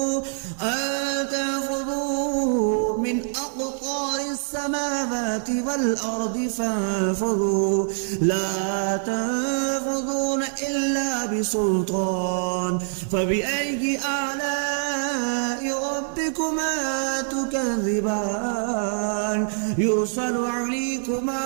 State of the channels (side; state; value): left; silent; digital silence